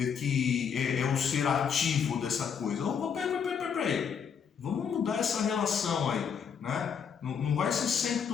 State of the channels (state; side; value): quieter; right; 7.0 dB